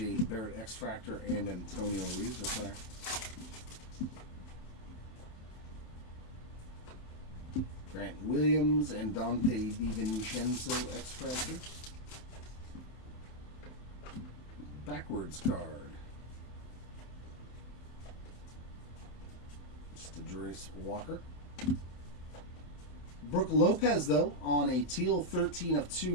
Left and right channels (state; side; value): late; right; 27 ms